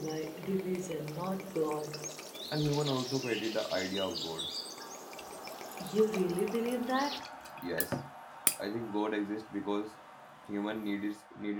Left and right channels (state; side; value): identical; both; correlation 1.00